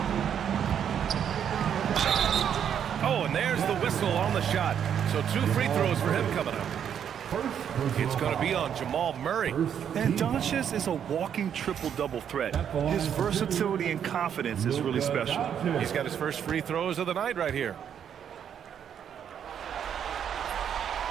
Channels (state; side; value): quieter; left; 8.7 dB